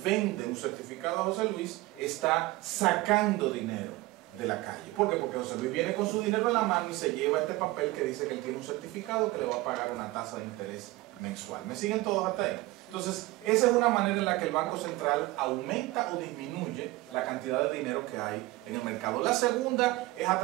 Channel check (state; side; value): quieter; left; 19.5 dB